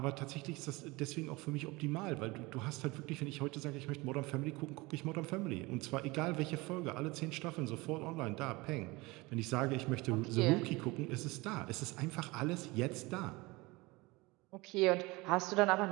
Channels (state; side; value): quieter; left; 23.1 dB